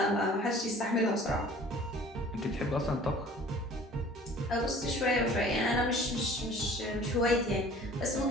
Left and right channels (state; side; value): normal; both; correlation 0.49